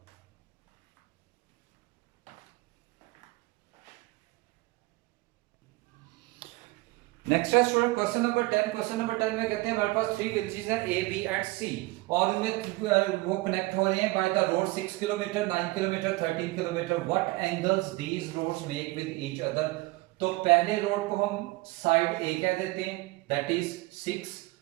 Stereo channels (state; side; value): quieter; left; 21.8 dB